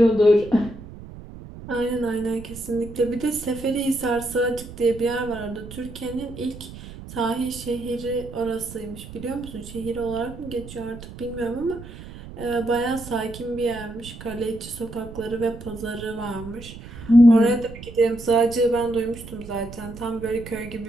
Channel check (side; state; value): right; noise; rumble, 14 dB below the sound